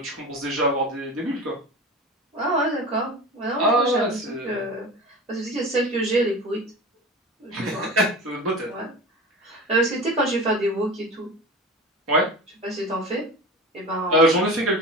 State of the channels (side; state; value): both; normal; correlation 0.32